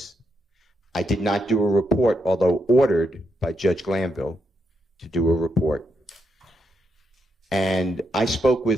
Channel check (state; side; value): normal; both; correlation 0.80